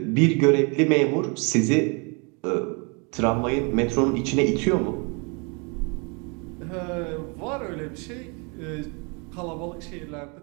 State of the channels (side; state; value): left; quieter; 33.1 dB